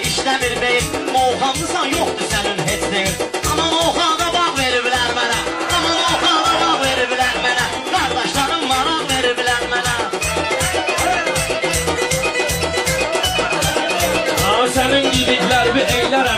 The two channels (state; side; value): identical; both; correlation 1.00